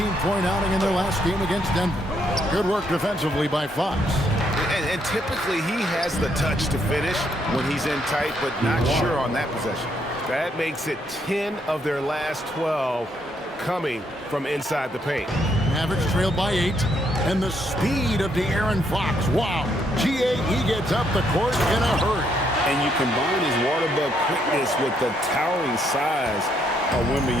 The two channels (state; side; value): normal; both; correlation 0.73